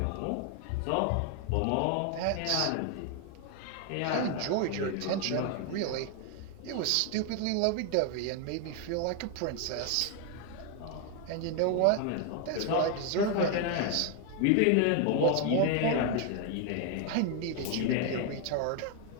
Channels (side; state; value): both; different; correlation 0.01